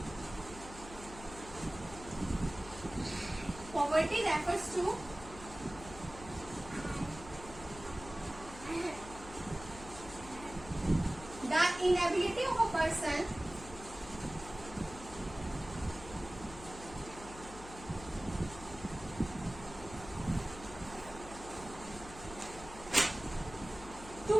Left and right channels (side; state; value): left; noise; hum, 15 dB below the sound